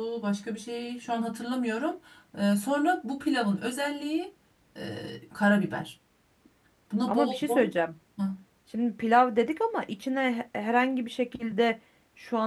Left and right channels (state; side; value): identical; both; correlation 1.00